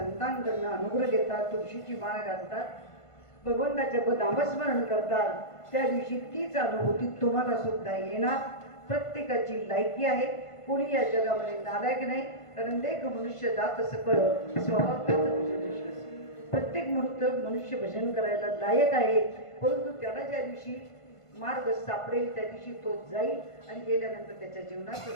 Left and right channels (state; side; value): late; right; 1.5 ms